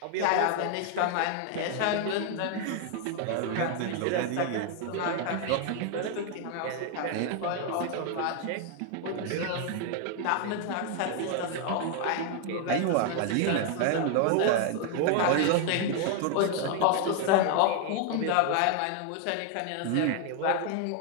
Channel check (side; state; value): both; different; correlation 0.00